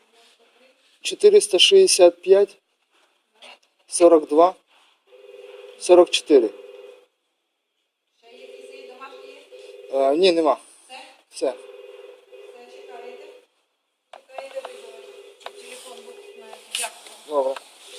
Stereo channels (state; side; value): identical; both; correlation 1.00